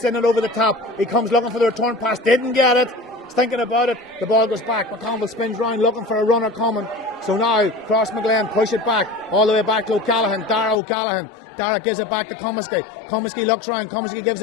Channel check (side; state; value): right; drops out; at 10.8 s